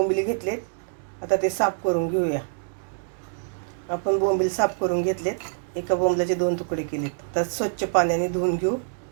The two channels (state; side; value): silent; left; digital silence